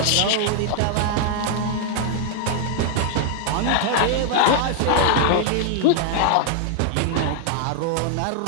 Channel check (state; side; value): different; both; correlation 0.00